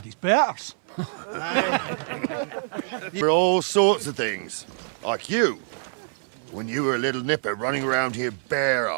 his betters. For all sorts of things, like you. When you were a little nipper running around here bare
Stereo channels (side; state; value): left; silent; 62 dB below the other